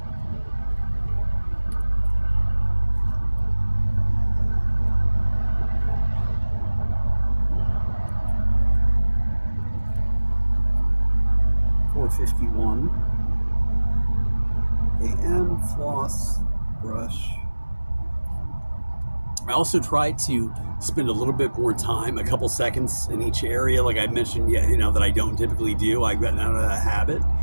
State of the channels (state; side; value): inverted; both; correlation -1.00